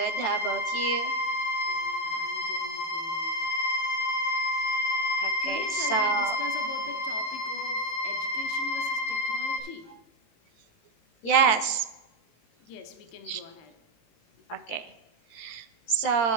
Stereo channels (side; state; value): right; late; 18 ms